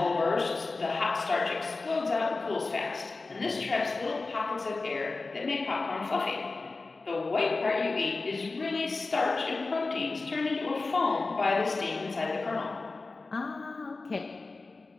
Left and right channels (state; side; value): quieter; right; 3.7 dB